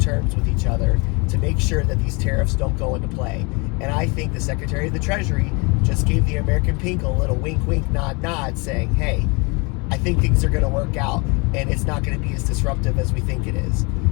with each other to make sure that these tariffs don't go into play. And I think the Secretary of the Treasury just gave the American people a little wink, wink, nod, nod, saying, hey, I think things are going to work out and it's not going to be as disruptive as we think it is.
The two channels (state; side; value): quieter; right; 29.6 dB